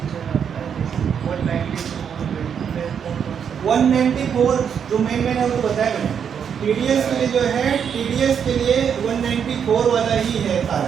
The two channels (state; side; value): quieter; left; 7.6 dB